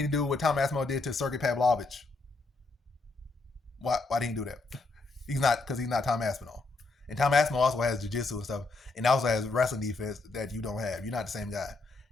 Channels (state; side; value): quieter; right; 3.4 dB